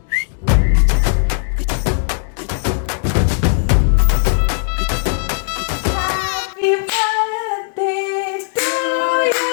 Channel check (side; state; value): right; silent; digital silence